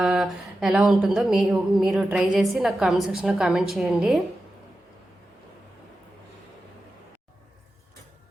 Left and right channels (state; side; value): normal; both; correlation 0.92